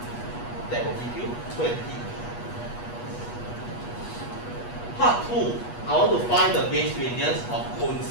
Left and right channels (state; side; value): late; right; 8.3 ms